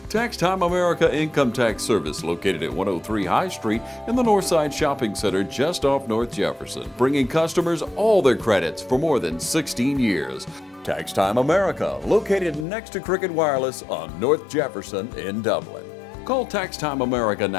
Tax Time America Income Tax Service, located at 103 High Street in the Northside Shopping Center just off North Jefferson, bringing customers all their credits for more than 16 years. Tax Time America, located next to Cricket Wireless on North Jefferson in Dublin. Call Tax Time America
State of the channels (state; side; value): drops out; right; at 12.7 s